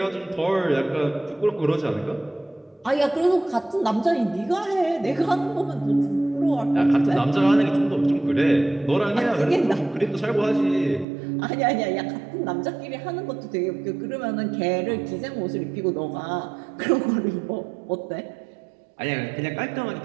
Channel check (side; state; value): left; drops out; at 11.1 s